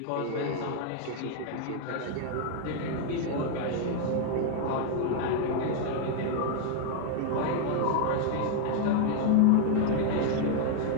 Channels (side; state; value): both; different; correlation 0.00